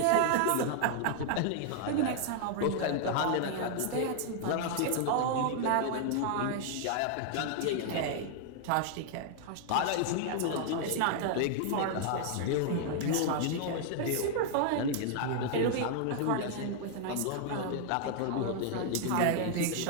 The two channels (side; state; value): both; different; correlation 0.00